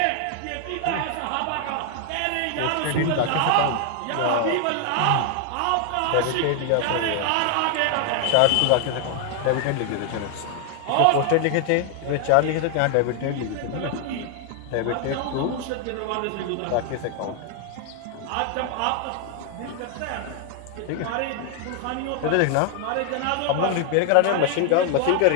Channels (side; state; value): both; different; correlation 0.00